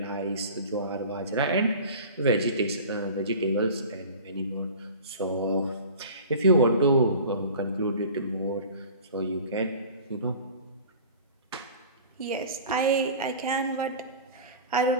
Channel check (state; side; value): inverted; both; correlation -0.40